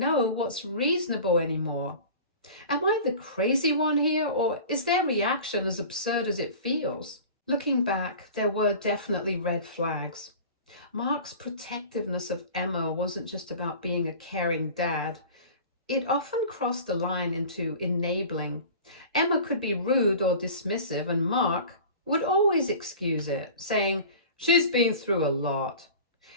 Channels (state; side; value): inverted; both; correlation -0.39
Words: what's reasonable anymore. Am I the crazy one here, or is their reaction as absurd as it feels? Looking back, there were definitely red flags. Mark's protectiveness of Emma wasn't just about being a caring dad. It often crossed the line into enabling. Emma could be rude or dismissive, and Mark would always excuse it, saying, "She's been through a lot."